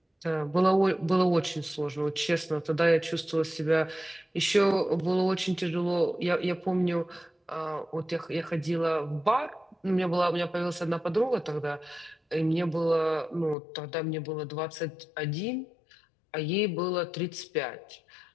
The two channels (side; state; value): right; drops out; at 13.6 s